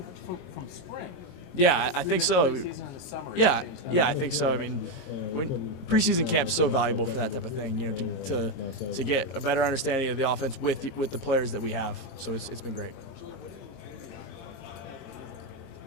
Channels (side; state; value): right; late; 22 ms